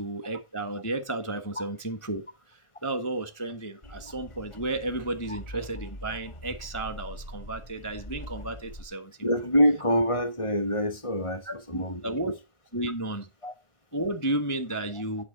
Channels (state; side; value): late; right; 1.4 ms